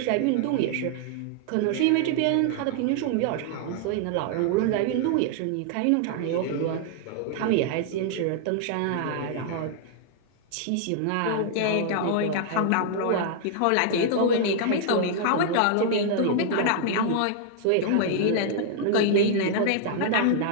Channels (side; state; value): both; different; correlation 0.00